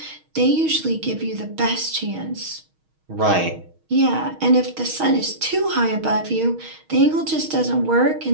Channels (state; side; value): late; left; 6.4 ms